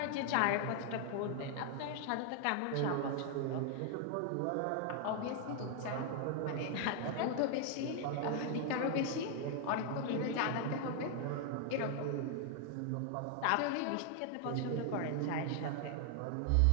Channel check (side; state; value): both; different; correlation 0.00